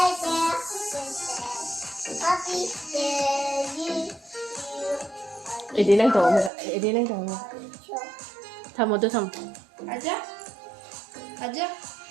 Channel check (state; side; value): drops out; left; at 6.5 s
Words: Đi lên tổ mình, đi lên tổ mình. Thầm một tôi thầm. Thaja? Thaja?